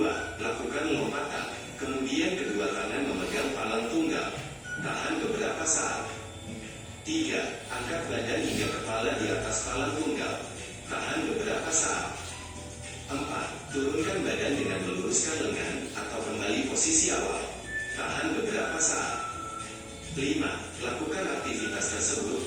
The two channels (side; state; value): both; identical; correlation 1.00